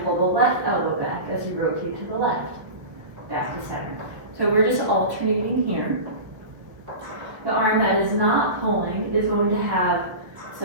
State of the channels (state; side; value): late; left; 1.3 ms